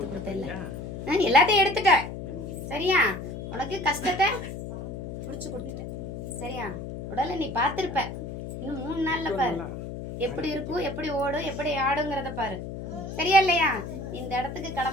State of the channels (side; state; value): left; noise; hum, 8 dB below the sound